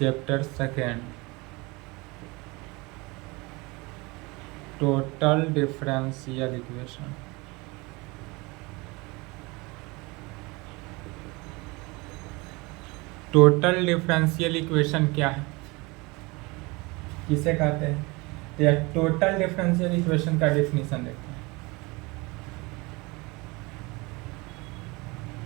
2 total differential equation. Total differential equation क्या है, किसे कहते हैं? तो यह टोटल डिफरेंशियल इक्वेशन का डेफिनेशन देखते हैं।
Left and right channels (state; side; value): quieter; left; 25.2 dB